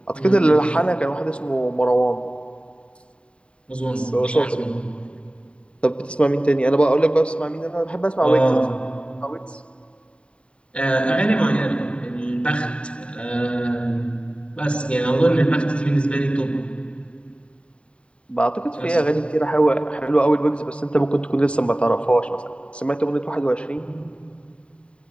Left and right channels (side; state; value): right; late; 0.058 ms